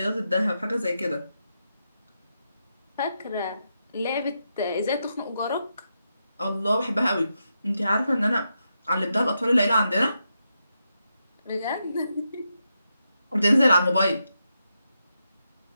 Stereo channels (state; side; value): inverted; both; correlation -0.85